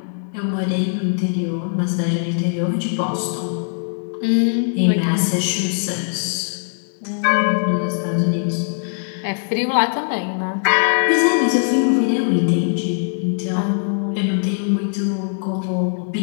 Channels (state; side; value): silent; right; 65 dB below the other